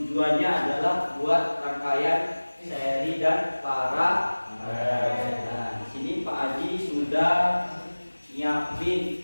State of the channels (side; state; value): both; inverted; correlation -1.00